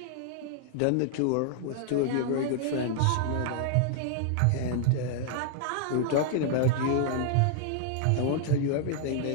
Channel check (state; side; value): different; both; correlation -0.01